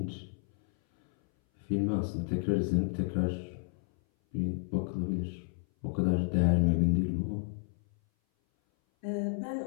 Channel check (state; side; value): silent; right; 57 dB below the other